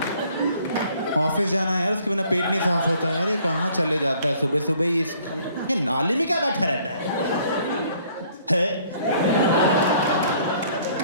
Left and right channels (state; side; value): inverted; both; correlation -0.60